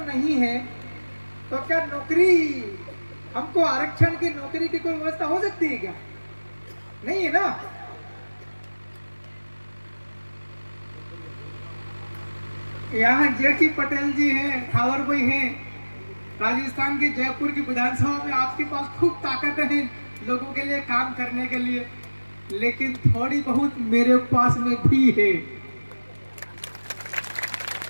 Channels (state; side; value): inverted; both; correlation -1.00